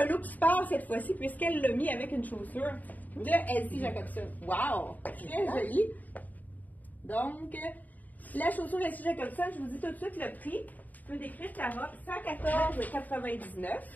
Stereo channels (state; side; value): late; right; 0.080 ms